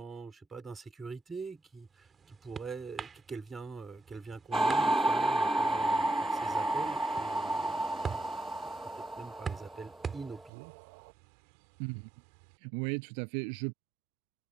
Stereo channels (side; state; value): left; drops out; at 10.5 s